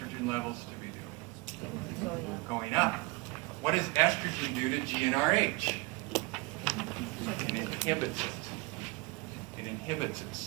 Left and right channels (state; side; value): quieter; left; 24.8 dB